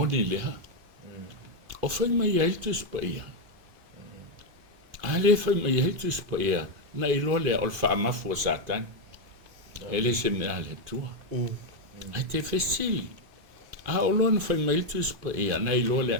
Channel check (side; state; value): left; late; 2.4 ms